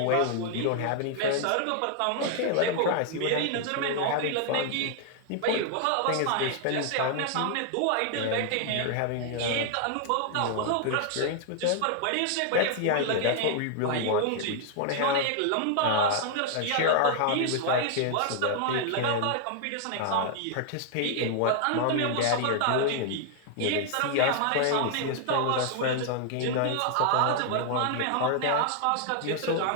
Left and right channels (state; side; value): different; both; correlation 0.00